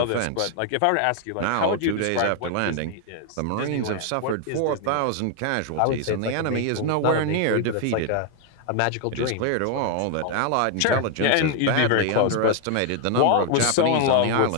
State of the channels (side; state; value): both; different; correlation 0.00